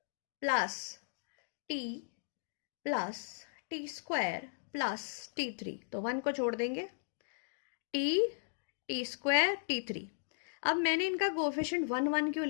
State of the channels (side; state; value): right; silent; digital silence